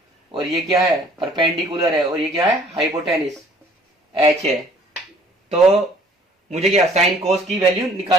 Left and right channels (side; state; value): both; normal; correlation 0.56